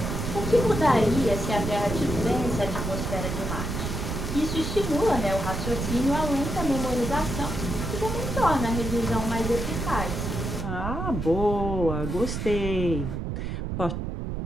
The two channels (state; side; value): noise; right; rumble, 3 dB below the sound